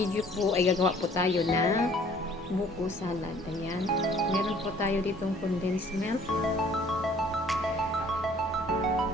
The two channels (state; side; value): normal; both; correlation 0.56